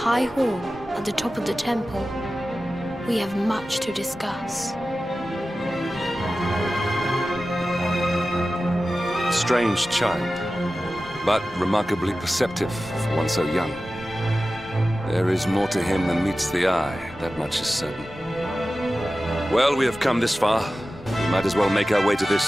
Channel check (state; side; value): noise; right; rumble, 26 dB below the sound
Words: hall at the top of the temple. We have much to discuss. Strange child, but remarkably perceptive for one so young. There is more to him than meets the eye, that much is certain. Well, we have come this far. We might as well make our way to